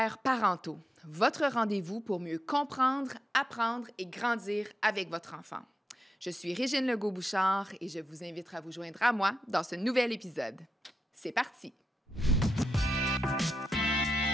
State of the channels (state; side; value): normal; both; correlation 0.87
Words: parentaux, votre rendez-vous pour mieux comprendre, apprendre et grandir avec votre enfant. Je suis Régine Legault-Bouchard et je vous invite à vous joindre à moi dans ce nouvel épisode. C'est parti!